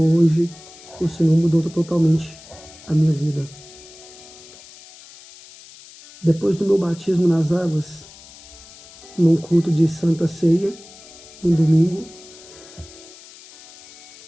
o Senhor mudou totalmente a minha vida. Depois do meu batismo nas águas, num culto de Santa Ceia, um domingo,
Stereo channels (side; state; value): left; noise; hiss, 20 dB below the sound